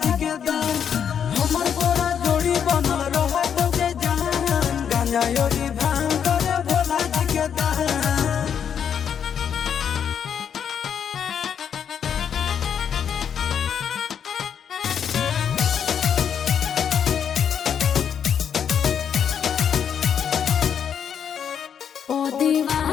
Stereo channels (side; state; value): right; quieter; 8.0 dB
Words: जी के दान। हमर तोरा जोड़ी बनल रहत के जहान। गांजा योगी भांग करे भोला जी के दान। ओ